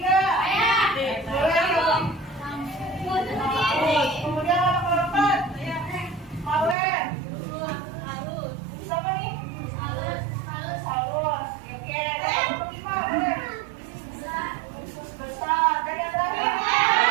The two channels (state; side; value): drops out; left; at 6.8 s